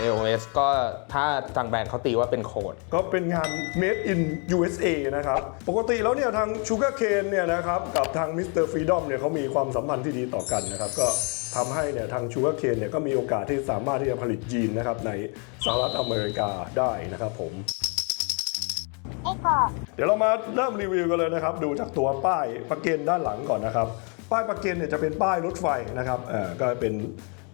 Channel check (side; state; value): right; quieter; 36.6 dB